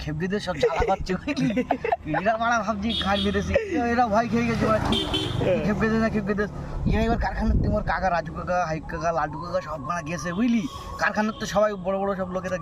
খেপে দিয়ে সব জ্বালা পাচ্ছে বুঝলি। এরা মারা ভাবছি খাই বেঁধেছি, এরা ভয় খেয়ে গেছে ওরা কি খেপে দে না খেপে দে। এবার কারখানার তোমার কাকা রাজু কাকা হাইক কাকা লাড্ডু কাকা সব মারা গেছে বুঝলি। কারখানার তো সবাই বড় বড় সব লোকেরা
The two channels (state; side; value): identical; both; correlation 1.00